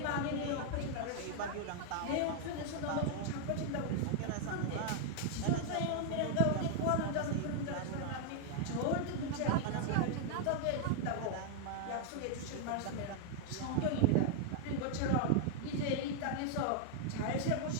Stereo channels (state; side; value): different; both; correlation 0.00